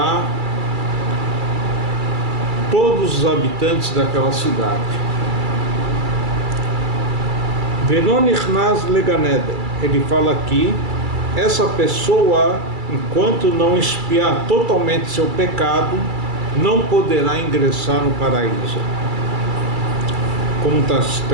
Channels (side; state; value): left; late; 2.3 ms